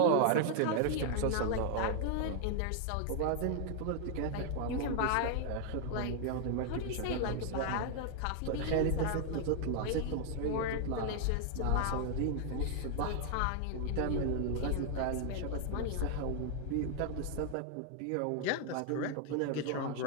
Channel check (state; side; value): different; both; correlation 0.00